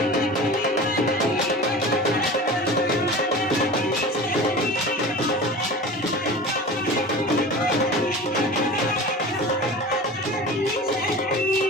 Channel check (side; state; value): both; normal; correlation 0.35